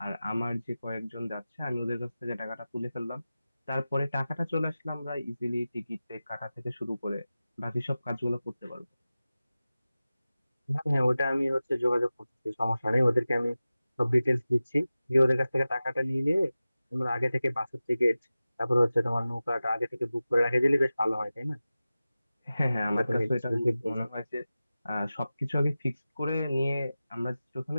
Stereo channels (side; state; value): both; inverted; correlation -0.95